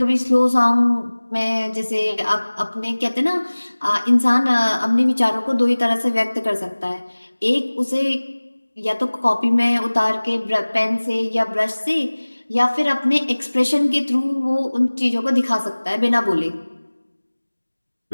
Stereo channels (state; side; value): inverted; both; correlation -1.00